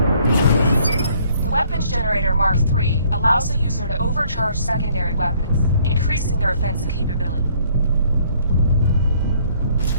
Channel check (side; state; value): both; inverted; correlation -0.62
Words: The weapons generator Mark III allows the user to overcharge secondary weapons, increasing their offensive capability.